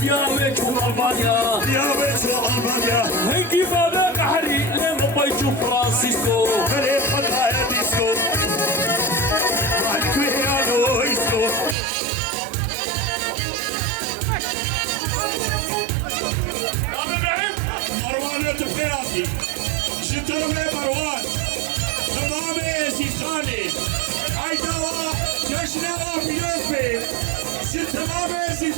چون ألبانيا ديابي شو ألبانيا هنكي بابا قحري لما بيجو فرانسيسكو خلي خطايا ديسكو الكويانو إيسكو عم إبراهيم مروان تبخيراتي شترمي مروان تمامي سيخاني عيداوا جشنوا بيوزبي شتمامي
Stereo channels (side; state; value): left; drops out; at 11.8 s